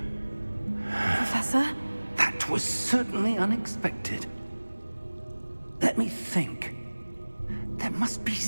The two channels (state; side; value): inverted; both; correlation -1.00